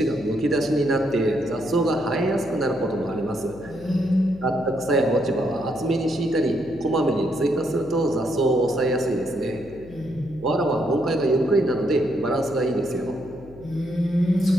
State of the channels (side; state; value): left; noise; hum, 21 dB below the sound